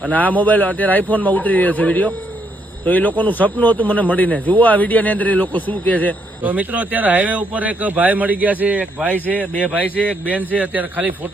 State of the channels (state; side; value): normal; both; correlation 0.74